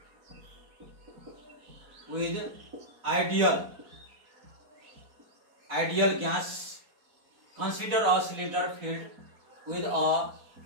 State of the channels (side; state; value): left; late; 4.3 ms